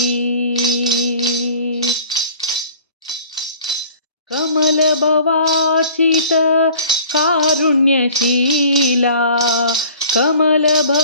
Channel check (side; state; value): both; inverted; correlation -0.49